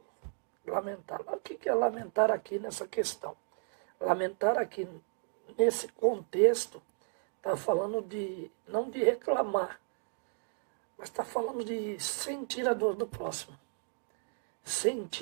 lamentar. O que é lamentar aqui nessa questão? Lamentar aqui, nesse contexto, está falando de, não de reclamar, mas está falando de sentir a dor do próximo.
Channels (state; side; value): silent; left; digital silence